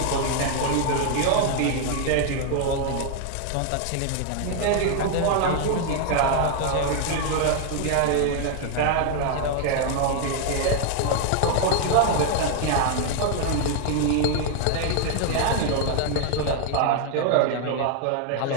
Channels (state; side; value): different; both; correlation 0.00